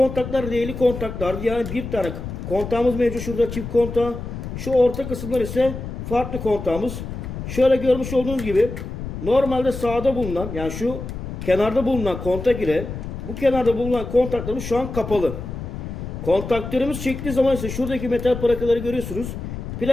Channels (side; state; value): left; noise; rumble, 8 dB below the sound